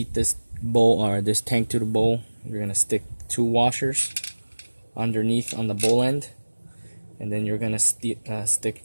this bowl, or this tank to the bowl, you're going to stick 2 washers underneath on the bowl end, and then you're going to stick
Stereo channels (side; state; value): both; inverted; correlation -1.00